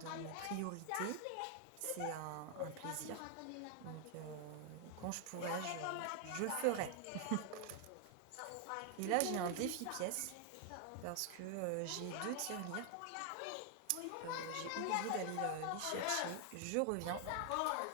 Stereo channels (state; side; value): different; both; correlation 0.00